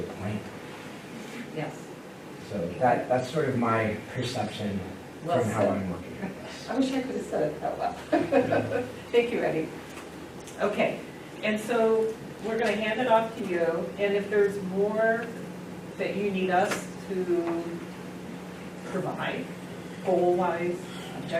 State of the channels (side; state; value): both; identical; correlation 1.00